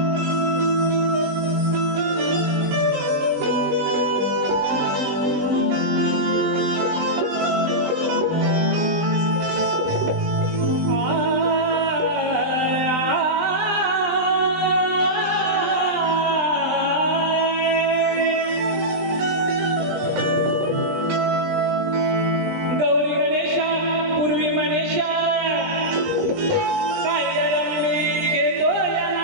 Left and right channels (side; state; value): left; late; 20 ms